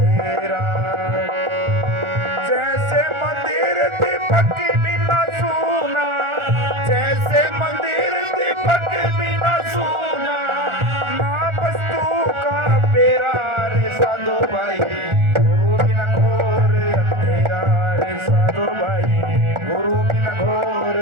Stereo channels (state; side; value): late; left; 1.4 ms